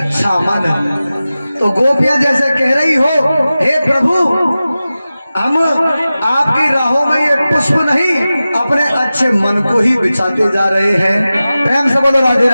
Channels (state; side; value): inverted; both; correlation -0.95